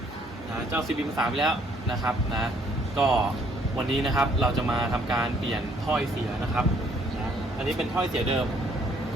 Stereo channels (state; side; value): normal; both; correlation 0.64